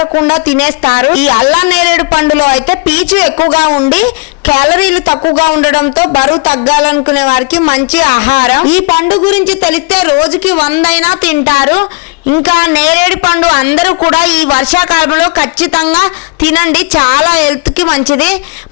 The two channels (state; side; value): quieter; right; 31.1 dB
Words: తినేస్తారు. ఈ అల్లం నేరేడు పండులో అయితే పీచు ఎక్కువగా ఉండి క్యాలరీలు తక్కువగా ఉండడంతో బరువు తగ్గాలనుకునే వారికి మంచి ఆహారం. ఈ పండు గురించి తెలిస్తే రోజుకి 100 అయినా తింటారు. ఇంకా నేరేడు పండు అందరూ కూడా ఈ వర్షాకాలంలో ఖచ్చితంగా తినండి, చాలా హెల్త్కి మంచిది.